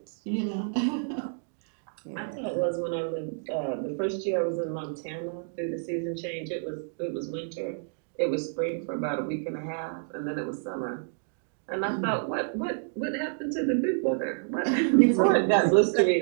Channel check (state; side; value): silent; left; digital silence